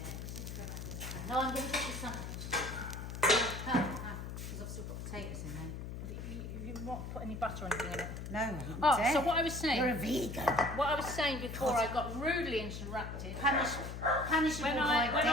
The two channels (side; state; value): left; noise; hum, 7 dB below the sound